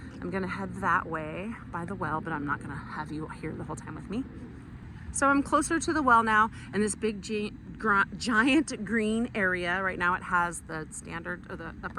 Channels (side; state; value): both; identical; correlation 1.00